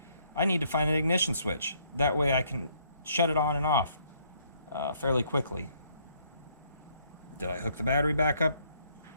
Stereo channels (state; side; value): inverted; both; correlation -0.68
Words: I need to find an ignition switch. That way I can shut it on and off fairly quickly. Did I hook the battery back up